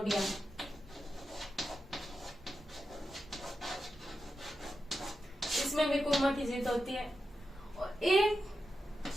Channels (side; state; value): both; normal; correlation 0.89